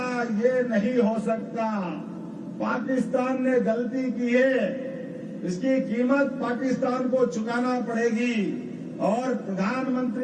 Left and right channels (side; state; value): both; identical; correlation 1.00